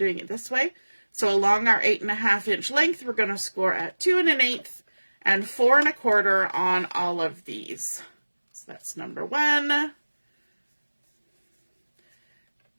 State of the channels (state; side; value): inverted; both; correlation -1.00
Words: it this way. So along our 8.5-inch length, we're going to score at 2 1/8 and 4 1/4 on all of these. So that's number 1,